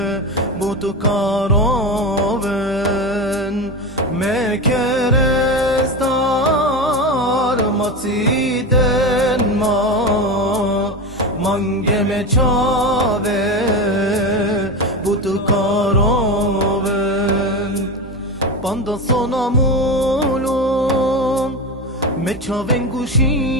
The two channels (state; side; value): normal; both; correlation 0.21